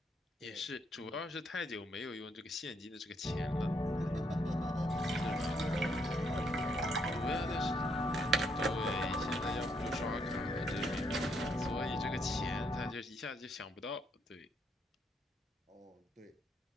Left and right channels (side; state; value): both; normal; correlation 0.74